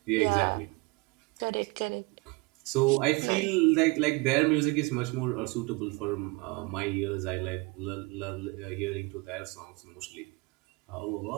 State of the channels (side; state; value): left; quieter; 25.8 dB